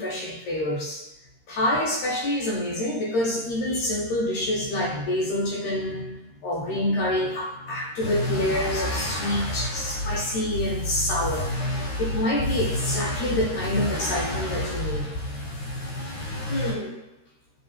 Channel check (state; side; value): late; right; 13 ms